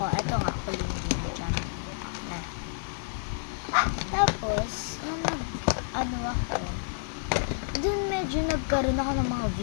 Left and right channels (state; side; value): silent; right; 58 dB below the other